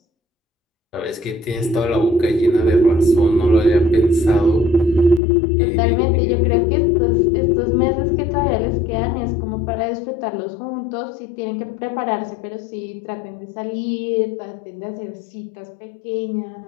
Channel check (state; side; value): drops out; right; at 5.2 s